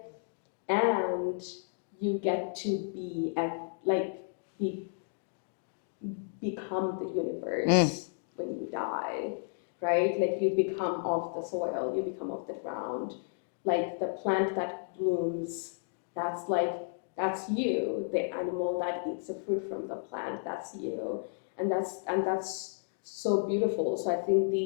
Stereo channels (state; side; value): silent; right; digital silence